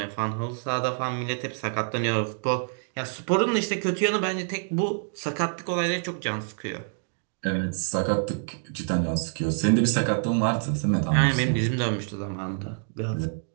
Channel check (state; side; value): silent; left; 60 dB below the other